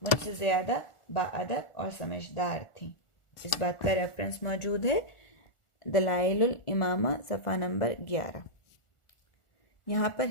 مجھ سے زیادہ باادب اور سمجھدار تھیں۔ اس بات کا ریفرنس موجود ہے دلائل الامامہ صفحہ نمبر 11۔ یہاں پر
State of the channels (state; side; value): late; right; 1.4 ms